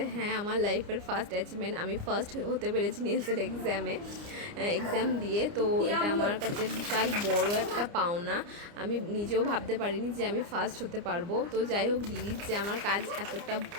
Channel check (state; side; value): late; left; 29 ms